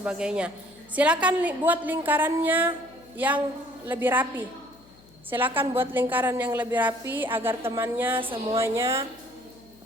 Silakan buat lingkarannya yang lebih rapi. Silakan buat lingkaran yang lebih rapi agar temannya semuanya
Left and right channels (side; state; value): left; noise; hum, 27 dB below the sound